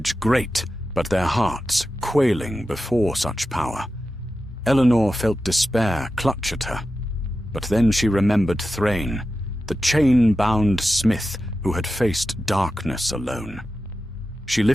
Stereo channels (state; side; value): normal; both; correlation 0.92